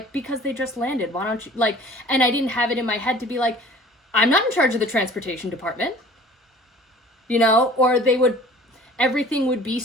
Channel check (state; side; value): normal; both; correlation 0.48